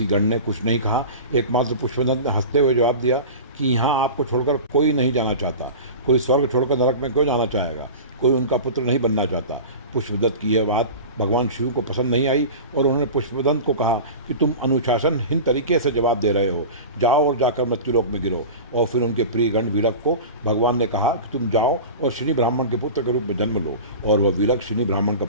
गण ने कुछ नहीं कहा। एकमात्र पुष्पदंत ने हंसते हुए जवाब दिया कि यहाँ आपको छोड़कर कोई नहीं जाना चाहता, कोई स्वर्ग छोड़कर नरक में क्यों जाना चाहेगा, कोई उनका पुत्र नहीं बनना चाहता। पुष्पदंत की यह बात भगवान शिव को पसंद नहीं आई और उन्होंने पुष्पदंत को कहा कि तुम अनुशासनहीन तरीके से जवाब दे रहे हो, जाओ और जाकर मृत्युलोक में गिरो। और फिर उनके प्रिय गण विलक को भगवान ने कहा कि तुम जाओ और शनि ब्राह्मण के पुत्र के रूप में जन्म लो, और वह विलक शनि ब्राह्मण का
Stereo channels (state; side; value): inverted; both; correlation -0.32